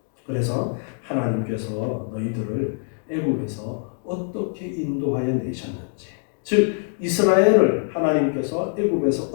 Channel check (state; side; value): silent; right; digital silence